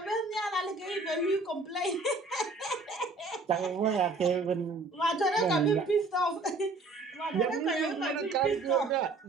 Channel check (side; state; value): left; quieter; 3.5 dB